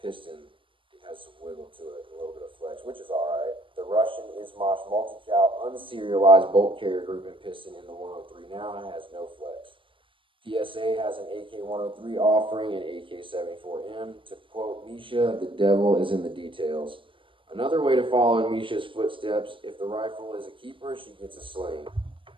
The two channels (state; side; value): late; left; 0.25 ms